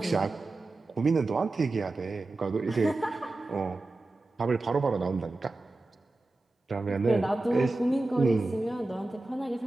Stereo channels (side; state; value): left; quieter; 3.1 dB